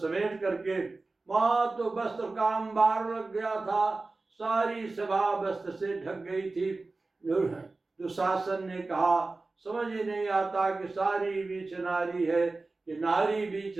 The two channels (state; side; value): quieter; left; 3.5 dB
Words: करके, वहां तो वस्त्र का अंबार लग गया था, सारी सभा वस्त्र से ढक गई थी। दुशासन ने कहा समझ ही नहीं आता कि सारी बीच नारी है कि नारी बीच